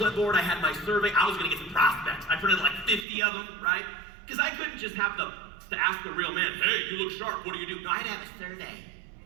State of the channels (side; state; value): left; drops out; at 3.1 s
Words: I had my survey. I was going to get some prospects. I printed like 50 of them, right? Because I couldn't just have to ask the real man, hey, you look sharp, what do you do? No, I had to have a survey.